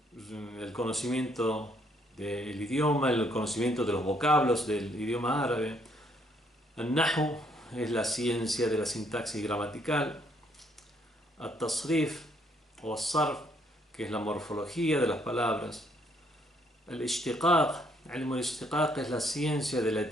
el conocimiento del idioma, el conocimiento de los vocablos del idioma árabe. El Nahu es la ciencia de la sintaxis gramatical. El Tasrif o el Sarf, que es la morfología de las palabras. El Ishtiqaq, Ilm al-Ishtiqaq, es la ciencia de la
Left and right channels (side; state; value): both; normal; correlation 0.69